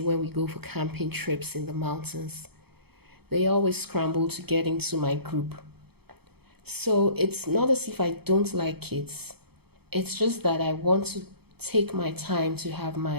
when we go for camping trips in the mountains. They always scramble to get into my group. So it's not as if I don't like kids. It's just that I want to take my time to have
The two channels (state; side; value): late; left; 0.97 ms